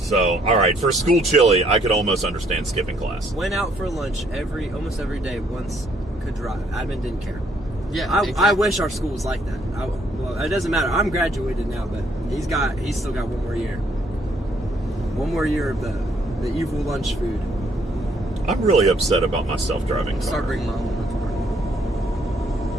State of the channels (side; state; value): both; normal; correlation 0.67